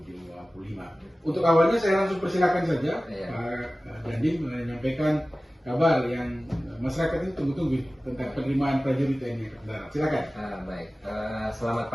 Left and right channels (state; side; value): normal; both; correlation 0.96